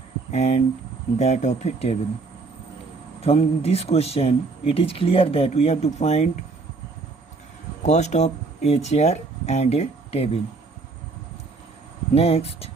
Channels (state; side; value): quieter; left; 3.9 dB